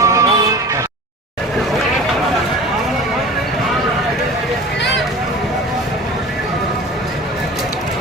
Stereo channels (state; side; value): normal; both; correlation 0.39